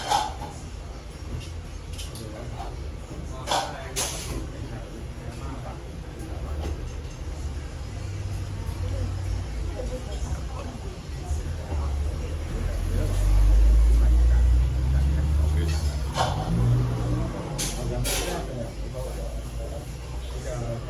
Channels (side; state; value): both; identical; correlation 1.00